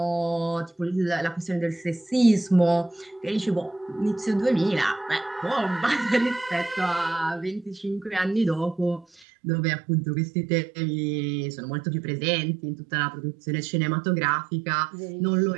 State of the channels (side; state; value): left; drops out; at 9.2 s